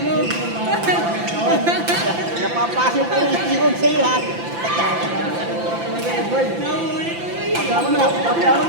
mo? Napapasok ko yung sigod sa'yo ha. Pagkama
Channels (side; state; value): left; late; 5.9 ms